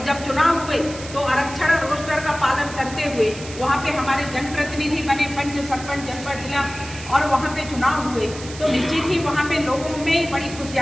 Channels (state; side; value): noise; right; hiss, 14 dB below the sound